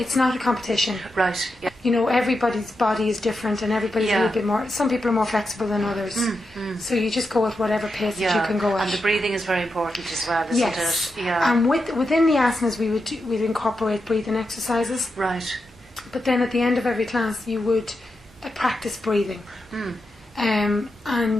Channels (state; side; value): normal; both; correlation 0.87